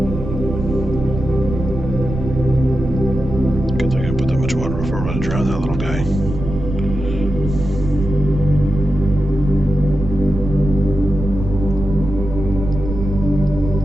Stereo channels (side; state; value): right; noise; rumble, 6 dB below the sound